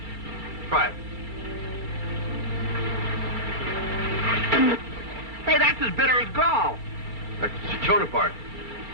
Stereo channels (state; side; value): late; right; 2.3 ms